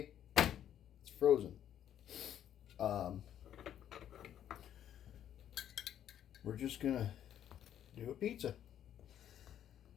It's frozen. We're just going to do a pizza.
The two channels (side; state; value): right; quieter; 10.4 dB